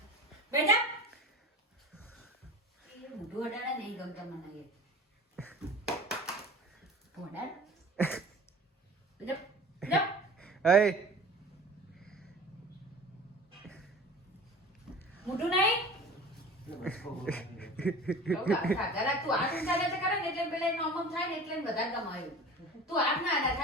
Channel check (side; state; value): both; normal; correlation 0.38